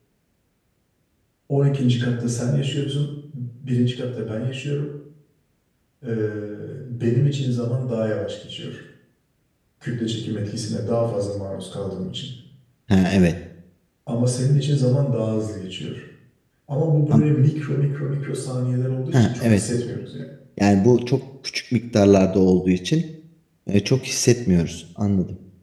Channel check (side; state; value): both; identical; correlation 1.00